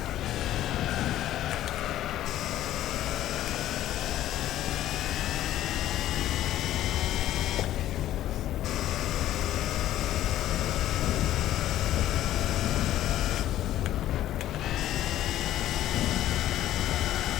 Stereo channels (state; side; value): quieter; right; 13.1 dB